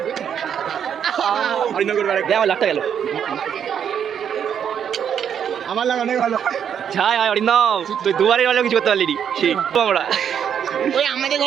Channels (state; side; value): quieter; left; 8.4 dB